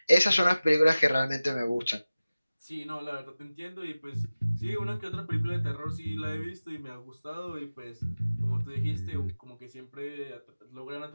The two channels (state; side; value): inverted; both; correlation -0.97